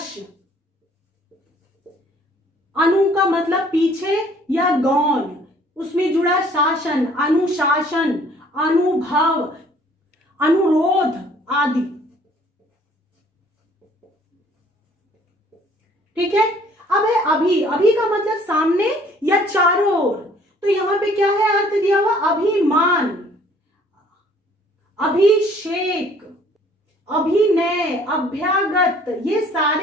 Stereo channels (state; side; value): normal; both; correlation 0.57